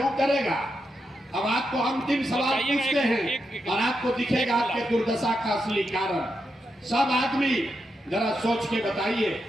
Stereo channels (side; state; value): both; normal; correlation 0.85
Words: करेगा? अब आपको अंतिम सवाल पूछते हैं और आपको दिखेगा आपके दुर्दशा का असली कारण। सब आदमी जरा सोच के बताइए,